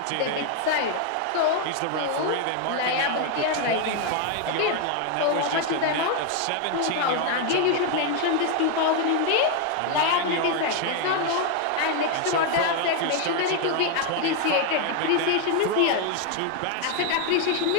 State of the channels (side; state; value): both; different; correlation 0.01